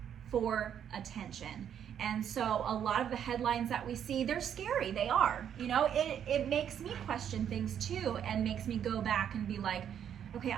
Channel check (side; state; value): left; quieter; 9.1 dB